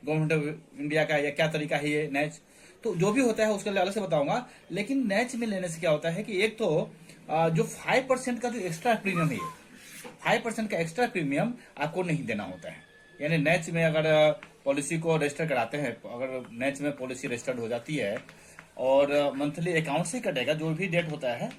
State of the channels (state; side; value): identical; both; correlation 1.00